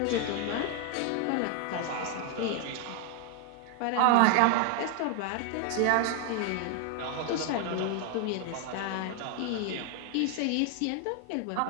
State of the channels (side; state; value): both; different; correlation 0.01